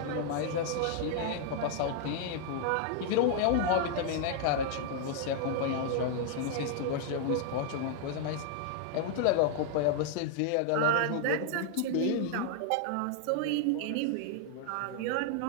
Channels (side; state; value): both; different; correlation 0.00